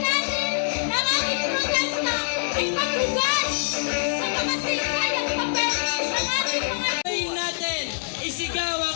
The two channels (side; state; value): right; silent; digital silence